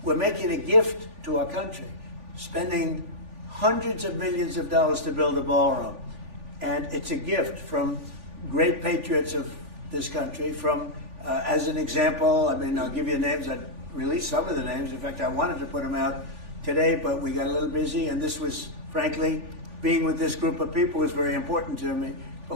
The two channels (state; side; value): late; left; 3.5 ms